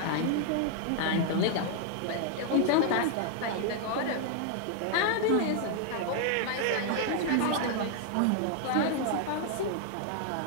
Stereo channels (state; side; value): different; both; correlation 0.00